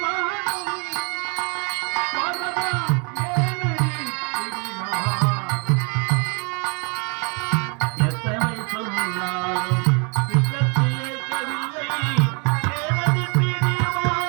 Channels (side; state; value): left; quieter; 33.9 dB